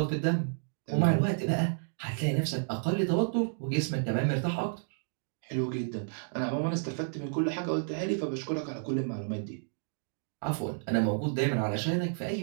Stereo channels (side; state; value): left; silent; digital silence